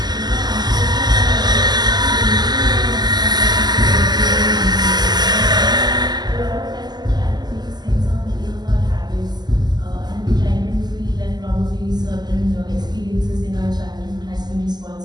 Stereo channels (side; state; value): left; late; 0.20 ms